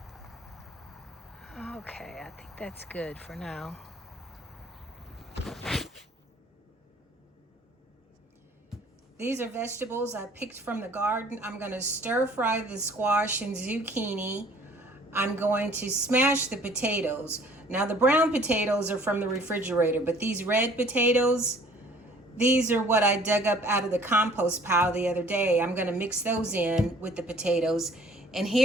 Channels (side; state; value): both; normal; correlation 0.54